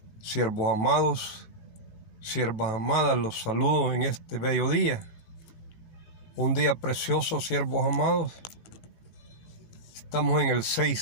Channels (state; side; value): late; right; 18 ms